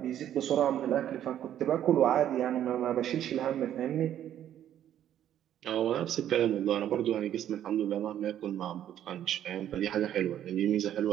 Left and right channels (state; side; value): quieter; left; 10.9 dB